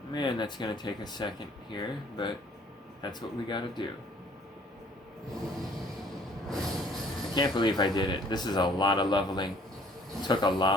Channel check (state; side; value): normal; both; correlation 0.57